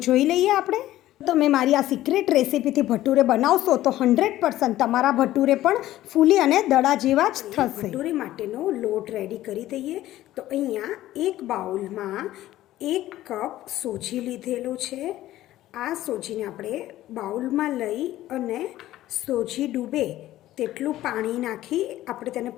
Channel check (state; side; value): quieter; right; 14.6 dB